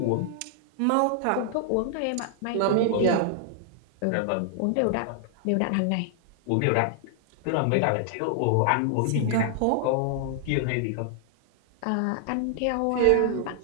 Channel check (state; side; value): different; both; correlation 0.00